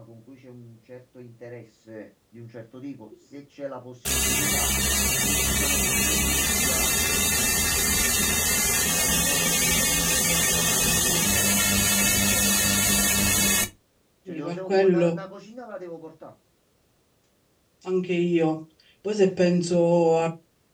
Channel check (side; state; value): both; identical; correlation 1.00